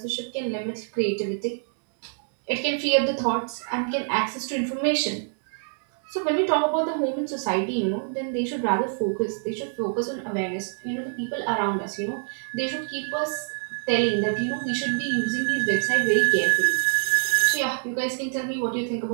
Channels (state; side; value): silent; left; digital silence